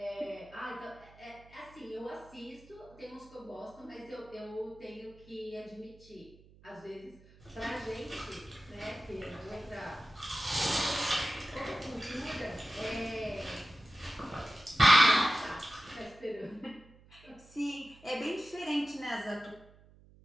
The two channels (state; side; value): noise; right; hum, 24 dB below the sound